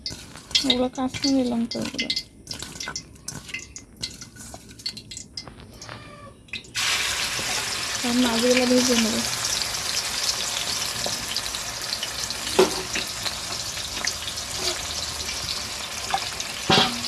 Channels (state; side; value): identical; both; correlation 1.00